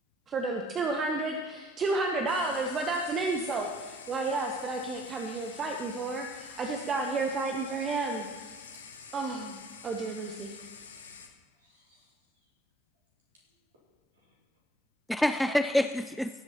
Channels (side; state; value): both; normal; correlation 0.58